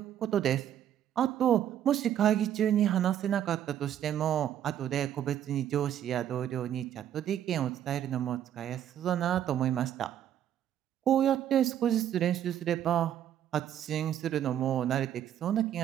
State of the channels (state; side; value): quieter; left; 10.6 dB